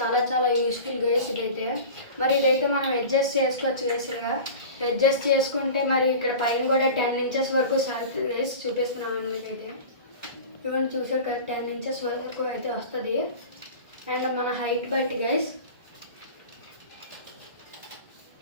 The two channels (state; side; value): inverted; both; correlation -0.35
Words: చాలా యూస్ఫుల్ గైస్ ఇదైతే. మరి ఇదైతే మనం అడ్జస్ట్ చేసుకోవచ్చు గైస్గా. అడ్జస్ట్ చేసుకుంటే మరి ఇక్కడ పైన కూడా 10 ఇంచెస్ వరకు గైస్ చూపిస్తున్నాను మీకైతే. ఇవన్నీ చూసారు కదా, 10 ఇంచెస్ వరకు అయితే వస్తుంది. అండ్ మన హైట్ బట్టి గైస్.